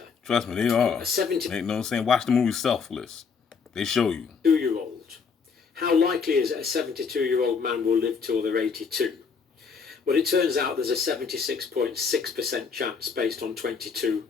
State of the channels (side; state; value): right; quieter; 5.7 dB